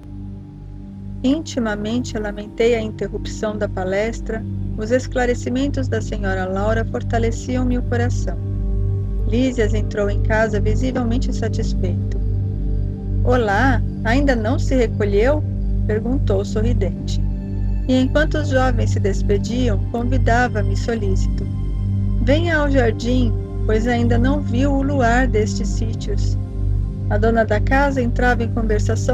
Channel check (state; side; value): identical; both; correlation 1.00